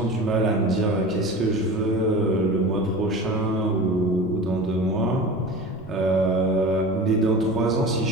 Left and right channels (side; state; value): right; noise; rumble, 23 dB below the sound